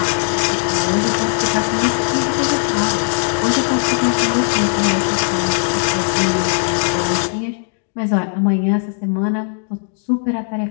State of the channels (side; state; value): right; silent; digital silence